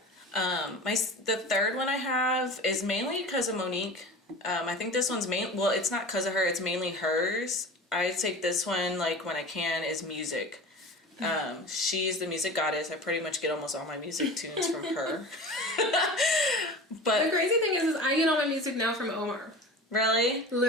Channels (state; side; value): normal; both; correlation 0.35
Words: The third one I have is mainly because of Monique. I think this one's well, it's not because of her, it's mainly hers. I take this one, like, when I can, is music. She's the music goddess. I pretty much get almost all my music tunes from her. But the crazy thing is I get all my music now from Omar. Really?